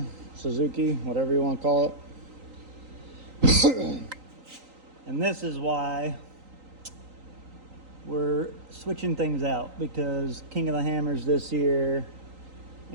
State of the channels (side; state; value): left; late; 3.9 ms